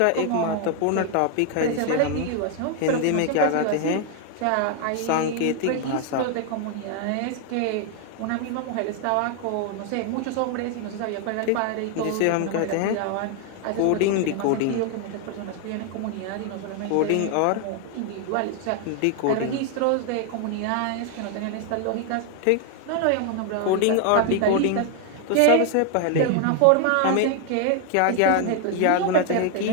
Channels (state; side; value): different; both; correlation 0.01